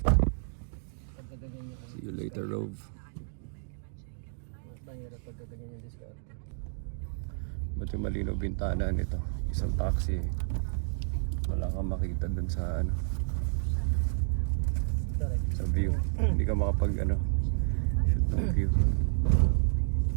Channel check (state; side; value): silent; left; digital silence